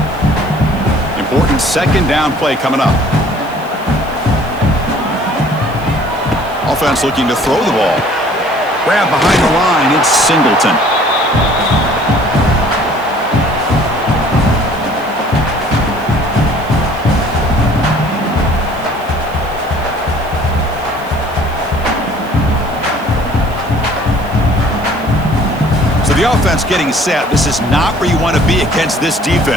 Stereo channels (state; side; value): noise; right; hiss, 23 dB below the sound